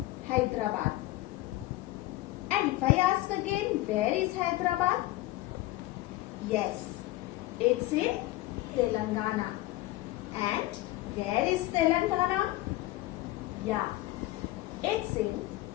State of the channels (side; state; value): right; quieter; 17.7 dB